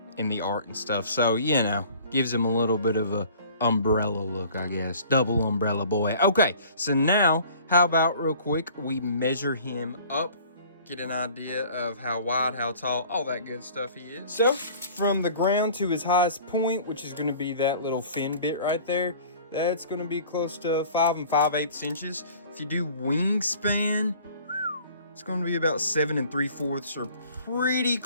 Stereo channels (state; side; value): inverted; both; correlation -0.49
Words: in the art and stuff. So, you know, gives him a little bit of a umbrella look, I guess. Double umbrella boy. Okay, so now, how about real quick, we measure him up. Get an idea of how wide, how tall, all that good stuff he is. So, from the ground to his highest point, which is going to be that little fin bit right there, that's going to be close to 5 5/8 inches. If you do wingspan, it's going to be about 7 3/4, or pretty